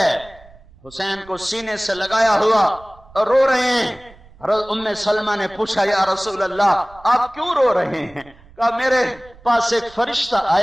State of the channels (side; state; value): right; noise; rumble, 24 dB below the sound